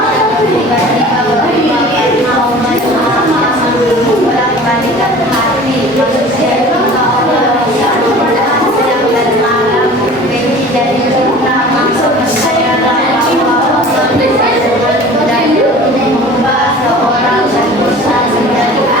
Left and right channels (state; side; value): normal; both; correlation 0.43